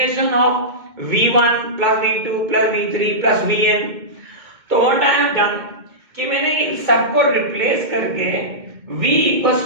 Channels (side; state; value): left; late; 2.2 ms